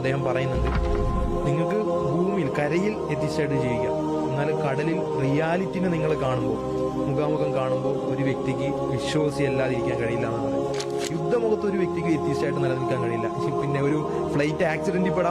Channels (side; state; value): both; identical; correlation 1.00